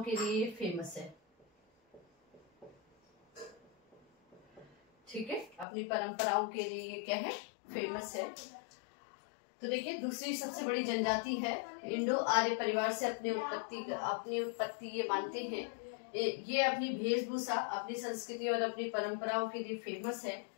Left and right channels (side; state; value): right; drops out; at 5.7 s